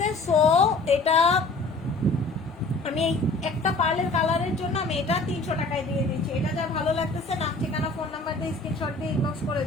সো এটা আমি এই একটা পার্লের কালারের জন্য আমি এটা 300 টাকায় দিয়ে দিচ্ছি। এটা যা ভালো লাগতেছে, নাম ঠিকানা ফোন নাম্বার দিয়ে স্ক্রিনশট দিয়ে ইনবক্স করে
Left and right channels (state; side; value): quieter; right; 3.2 dB